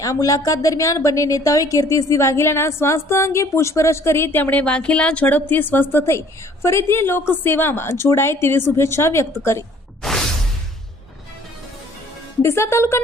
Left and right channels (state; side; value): normal; both; correlation 0.56